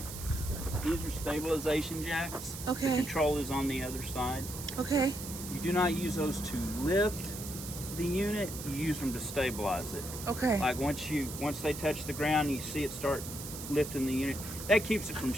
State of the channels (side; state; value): right; noise; hiss, 10 dB below the sound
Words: these are stabilization jacks. The Okay. control is on the other side. Okay. You do not use those to lift the unit. You use them to stabilize it. Okay. Like once they touch the ground, you see it start lifting the unit. That keeps it from